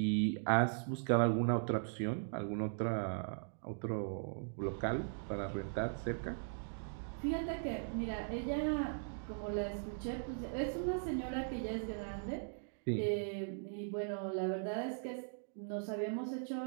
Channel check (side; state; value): left; silent; digital silence